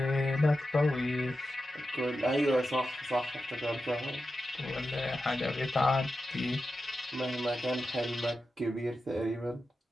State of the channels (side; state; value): both; normal; correlation 0.91